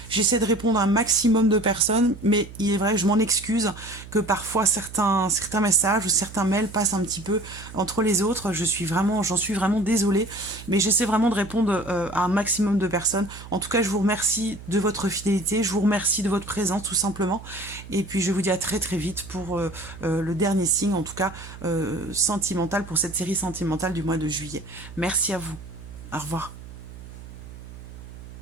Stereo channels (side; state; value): right; noise; hum, 15 dB below the sound